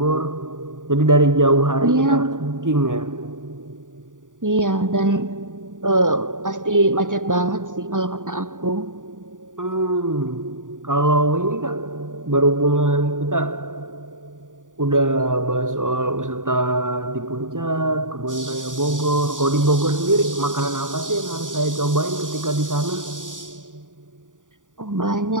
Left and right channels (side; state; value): left; late; 0.88 ms